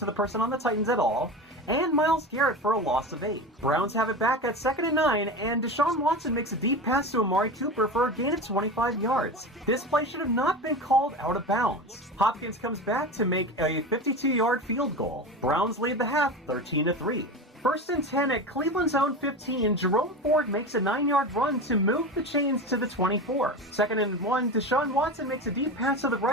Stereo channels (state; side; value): normal; both; correlation 0.26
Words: the person on the Titans at all, and Myles Garrett for a loss of 8. Browns have it back at 2nd and 9, and Deshaun Watson makes a deep pass to Amari Cooper for a gain of 25 yards. This play should have not been called out of bounds. Hopkins comes back to make a 52-yard field goal. Browns lead the half 13-3. 1st and 10 at Cleveland's own 15, Jerome Ford makes a 9-yard run to move the chains to the 24. 2nd and 1, Deshaun Watson makes a deep pass to the